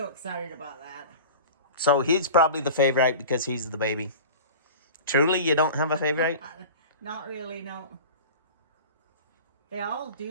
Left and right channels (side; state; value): both; inverted; correlation -0.36